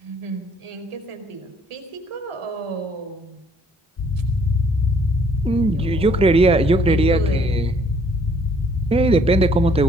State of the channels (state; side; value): normal; both; correlation 0.63